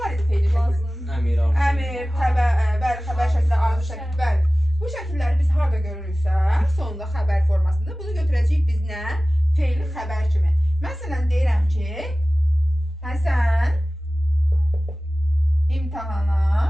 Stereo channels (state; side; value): normal; both; correlation 0.97